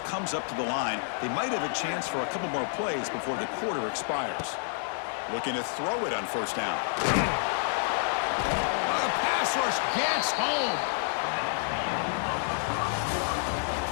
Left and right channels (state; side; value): silent; right; 59 dB below the other